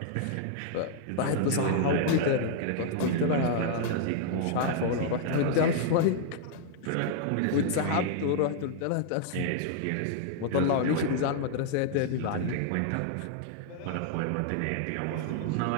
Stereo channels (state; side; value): different; both; correlation -0.01